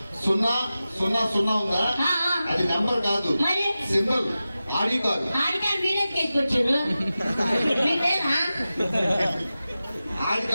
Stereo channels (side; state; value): both; inverted; correlation -0.94